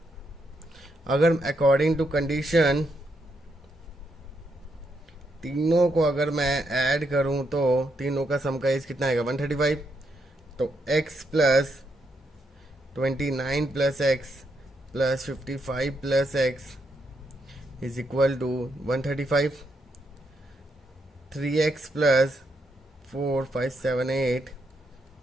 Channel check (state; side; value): normal; both; correlation 0.79